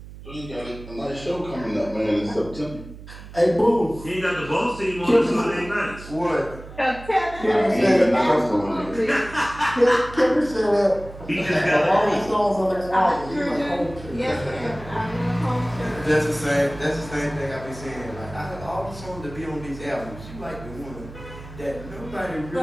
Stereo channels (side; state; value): right; noise; hum, 15 dB below the sound